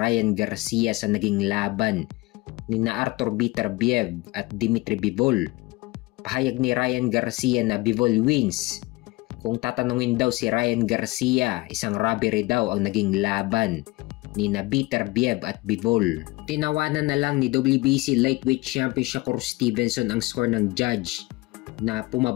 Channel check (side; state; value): right; quieter; 21.9 dB